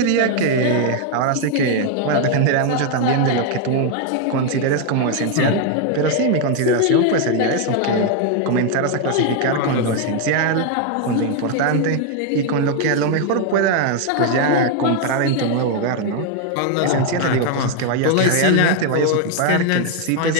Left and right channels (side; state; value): both; different; correlation 0.01